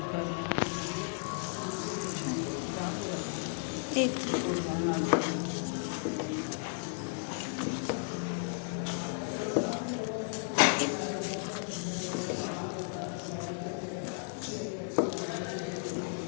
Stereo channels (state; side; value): silent; right; 55 dB below the other